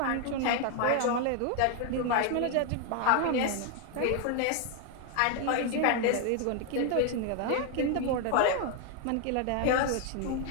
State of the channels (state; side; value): different; both; correlation 0.01